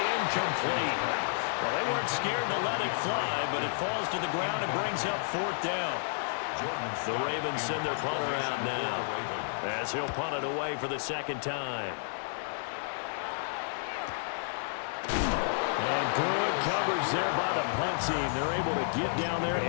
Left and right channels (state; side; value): silent; right; digital silence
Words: incomplete. Well, they weren't scared to let it fly, but it falls to the ground and brings up fourth down. The Ravens send their punter out now as he'll punt it away for the second time. And good coverage there by the punt team. They're able to get down there